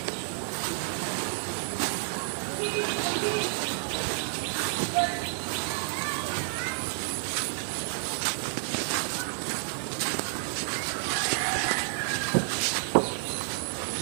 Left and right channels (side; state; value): left; silent; digital silence